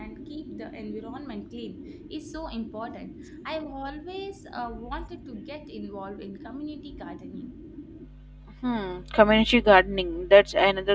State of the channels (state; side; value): identical; both; correlation 1.00